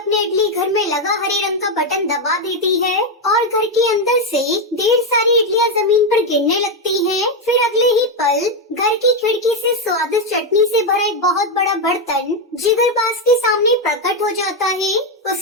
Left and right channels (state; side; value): normal; both; correlation 0.06